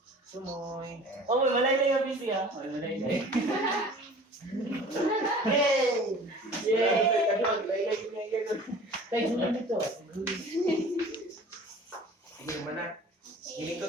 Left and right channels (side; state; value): both; normal; correlation 0.45